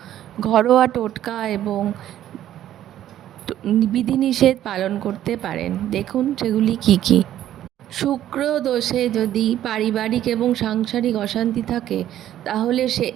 ঘরোয়া টোটকা এবং বিধিনিষেধ পালন করতে পারেন। দেখুন সেগুলি কি কি। শুক্র দোষে যদি পারিবারিক এবং সাংসারিক অশান্তি থাকে তাহলে সে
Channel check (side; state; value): left; quieter; 12.0 dB